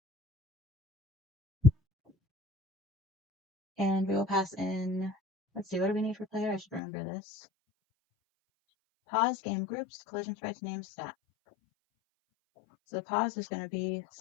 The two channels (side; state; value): right; drops out; at 6.8 s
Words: And we will pass in, let's see, what do we need for player? I should remember this. Pause, game groups, collision sprites, name, stat. So the pause is going to be